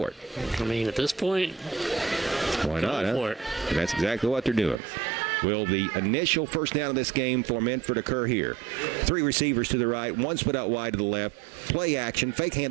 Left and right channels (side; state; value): left; drops out; at 4.8 s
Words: it? I mean, at this point, why not? Go for it. That's exactly what they're doing. Will the initial first down of this game for Minford occur here? 3 receivers to the right, 1 split out wide to the left. Play action, fake